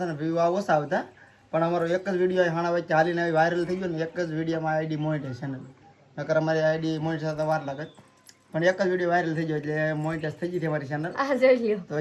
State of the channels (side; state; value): both; identical; correlation 1.00